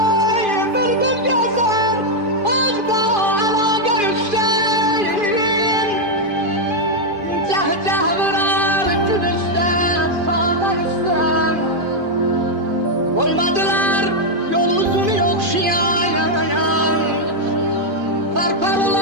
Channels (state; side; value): late; left; 2.5 ms